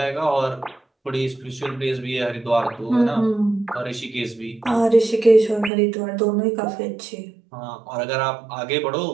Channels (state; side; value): drops out; left; at 5.7 s